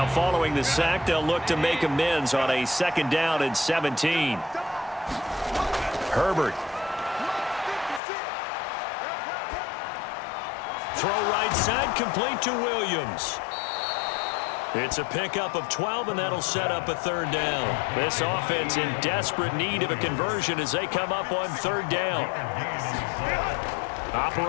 following the sack, they'll look to make amends on a 2nd down and 17. Herbert. Throw right side, complete to Williams. It's a pickup of 12, and that'll set up a 3rd down. This offense in desperate need of a conversion as they come up on 3rd down.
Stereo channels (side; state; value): right; drops out; at 8.0 s